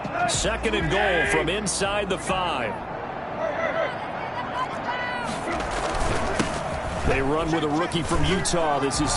Second and goal from inside the 5. They run with a rookie from Utah. This is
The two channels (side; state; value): both; identical; correlation 1.00